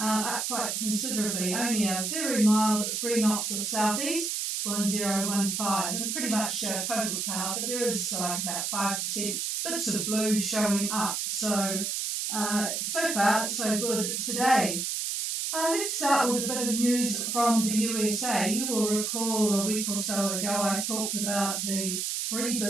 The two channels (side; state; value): right; noise; hiss, 1 dB below the sound